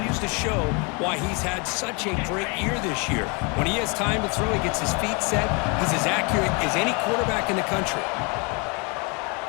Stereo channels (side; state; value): right; quieter; 31.8 dB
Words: to show why he's had such a great year this year. When he has time to throw, he gets his feet set. He's as accurate as any quarterback in the country.